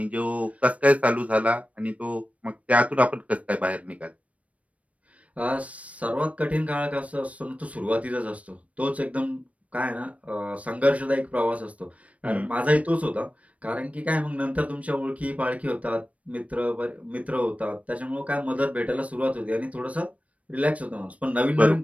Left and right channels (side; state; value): left; late; 0.066 ms